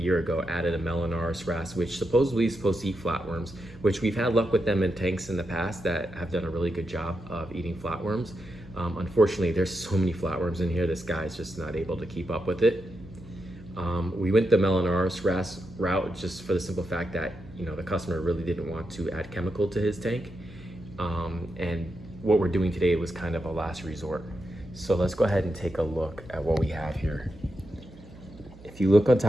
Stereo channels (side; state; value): right; noise; hum, 20 dB below the sound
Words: ago, added a Melanoris wrasse, which supposedly is supposed to eat flatworms, which we've had luck with them in tanks in the past that have done a really good job of eating flatworms. Unfortunately, there's so many flatworms in here, this guy's just not able to keep up with it. We went the Melanoris wrasse route just for the simple fact that, you know, the customer really didn't want to add chemical to his tank. And what we're doing today was kind of a last resort. So let's go ahead and take a look at what we have here. If you look on